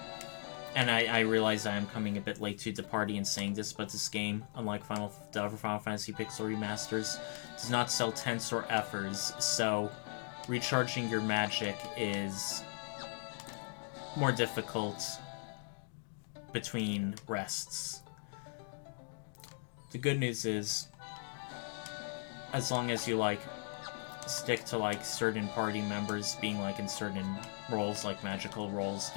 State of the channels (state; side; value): silent; right; 52 dB below the other